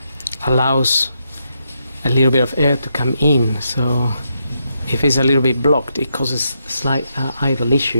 allows a little bit of air to come in, so if it's a little bit blocked it causes a slight idle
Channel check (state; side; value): inverted; both; correlation -0.81